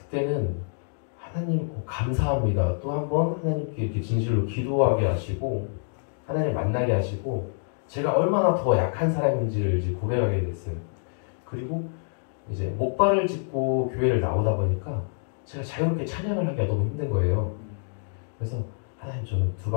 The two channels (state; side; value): silent; right; digital silence